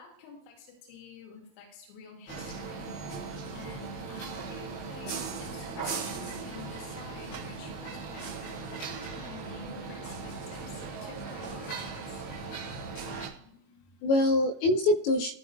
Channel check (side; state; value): right; late; 22 ms